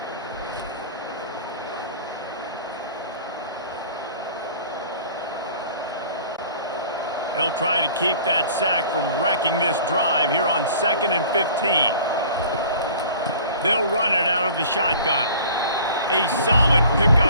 They'll try to keep that sack from wrecking this drive here on 2nd and 15. They'll run it out of the shotgun. A solid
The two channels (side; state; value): both; inverted; correlation -0.47